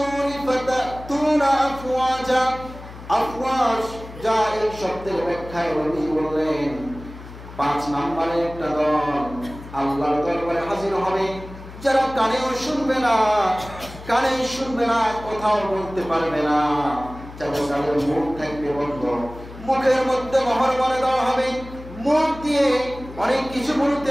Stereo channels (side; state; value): left; noise; hum, 15 dB below the sound